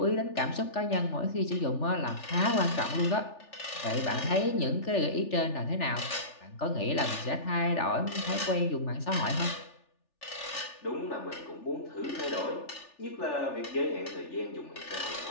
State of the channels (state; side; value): late; right; 3.4 ms